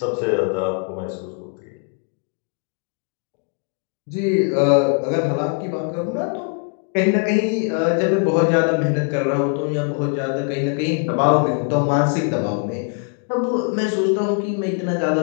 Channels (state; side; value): quieter; right; 35.6 dB